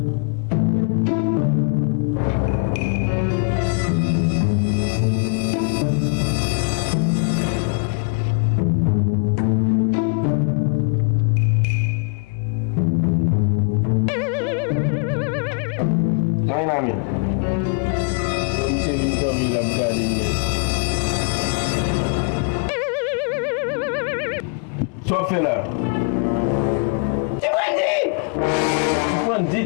Amin. Monsieur Vincent Villa Brigade email. Sofela. Ibu Andi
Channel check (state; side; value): quieter; right; 39.9 dB